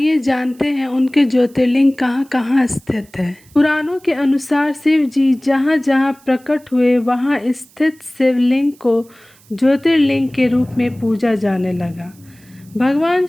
जानते हैं उनके ज्योतिर्लिंग कहाँ कहाँ स्थित है। पुराणों के अनुसार शिव जी जहाँ जहाँ प्रकट हुए वहाँ स्थित शिवलिंग को ज्योतिर्लिंग के रूप में पूजा जाने लगा। भगवान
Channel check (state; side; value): noise; right; hiss, 28 dB below the sound